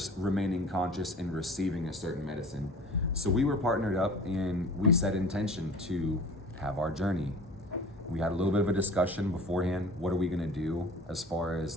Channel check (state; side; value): normal; both; correlation 0.42